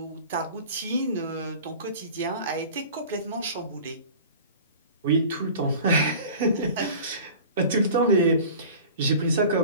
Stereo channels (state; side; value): inverted; both; correlation -0.41